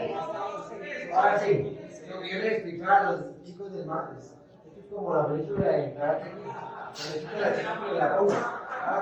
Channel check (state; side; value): identical; both; correlation 1.00